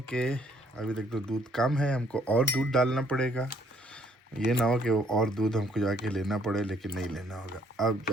कि अभी तक तो दूध कम है, हमको और दूध डालना पड़ेगा। ये ना हो कि और दूध हमको जाके लेना पड़े, लेकिन नहीं लेना होगा। अब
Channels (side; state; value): both; normal; correlation 0.65